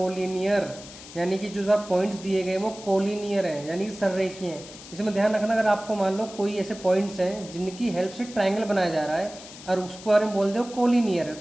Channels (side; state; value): left; noise; hiss, 16 dB below the sound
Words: यानी कि जो पॉइंट्स दिए गए वो कोलिनियर हैं, यानी कि सररेखीय हैं। इसमें ध्यान रखना, अगर आपको मान लो कोई ऐसे पॉइंट्स हैं जिनकी हेल्प से ट्राइंगल बनाया जा रहा है और उसको बारे में बोल दो कोलिनियर है,